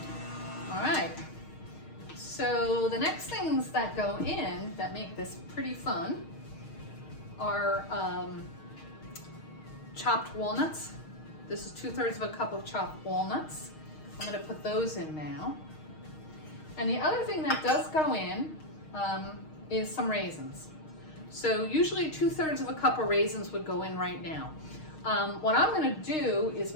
All right. So the next things that go in that make this pretty fun are chopped walnuts. This is 2/3 of a cup of chopped walnuts. I'm going to put those in now. And the other thing that does go in is some raisins. So usually 2/3 of a cup of raisins would go in right now. What I'm going to do is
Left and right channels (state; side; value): late; right; 6.4 ms